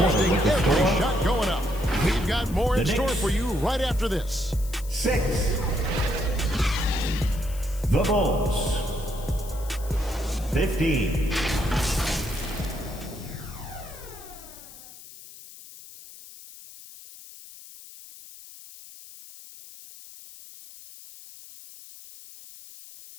contesting with the every score. shot going up. We've got more in The store Knicks. for you right after this. 6. The Bulls. 15.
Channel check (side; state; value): left; noise; hiss, 17 dB below the sound